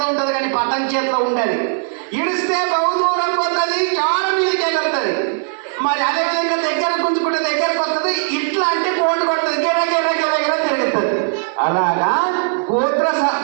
ఉంటుంది, కానీ పతంగ్ చేతిలో ఉండదు. ఇడిస్తే బహుదూరం పోతుంది, చాలా మీదకి ఎగురుతుంది. మరి అదేవిధంగా దగ్గర గుంజుకుంటే దగ్గరకు వస్తుంది. ఇట్లా అంటే కోటు కొడుతుంది, గిర గిర గిర గిర తిరుగుతుంది. అలాగా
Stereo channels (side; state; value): left; silent; digital silence